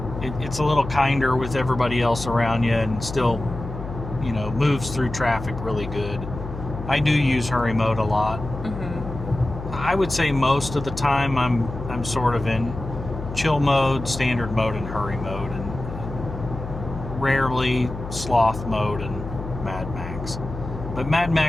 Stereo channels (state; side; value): noise; left; hum, 9 dB below the sound